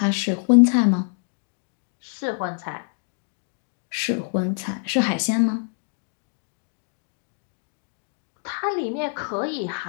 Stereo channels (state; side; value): silent; right; 59 dB below the other